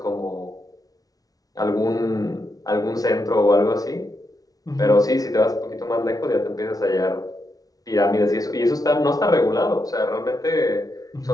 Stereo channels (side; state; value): right; late; 0.18 ms